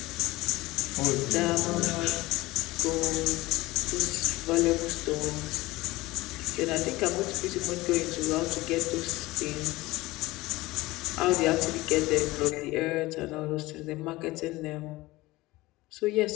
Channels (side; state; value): right; quieter; 19.7 dB